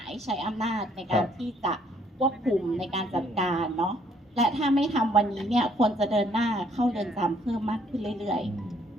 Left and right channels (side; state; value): both; normal; correlation 0.65